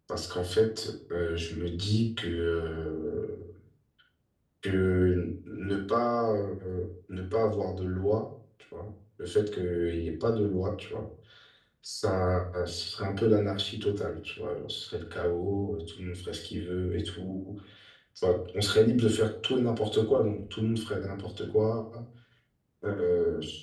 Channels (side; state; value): both; identical; correlation 1.00